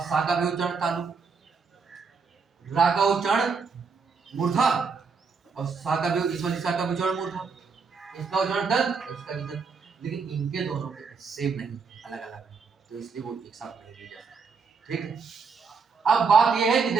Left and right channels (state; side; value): quieter; left; 5.2 dB